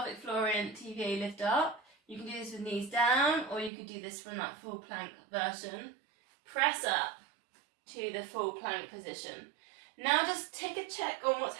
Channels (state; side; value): drops out; left; at 3.7 s